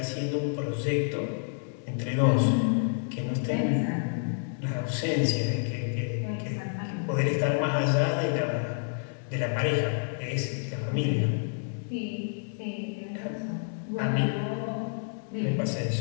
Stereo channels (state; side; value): silent; right; digital silence